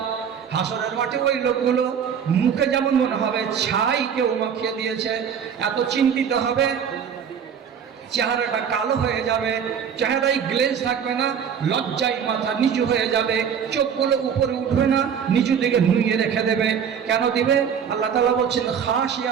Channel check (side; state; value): left; quieter; 7.6 dB